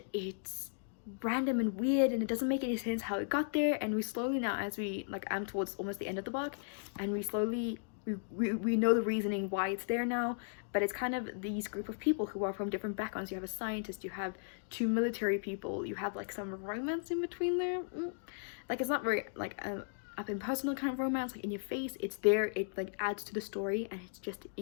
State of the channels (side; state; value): right; silent; digital silence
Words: it's random and weird and it doesn't make any sense how it got there. And we slowly now, as we like, I'm towards almost the end of the book, and we slowly we know the reasoning why it's there now. But it's kind of these group of people who are from different backgrounds. You have a scientist, you have two military people, you have like some romance in between there. Like, it's not very like up in personal kind of romance, like in your face. It's there, it like adds to the story, and it's just